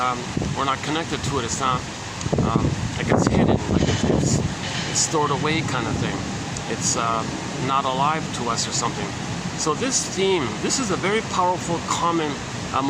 We're not connected to it. It's not like it's hidden, like it's stored away, kind of thing. It's not alive to us or something. So this theme, this is a very powerful, common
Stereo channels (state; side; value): identical; both; correlation 1.00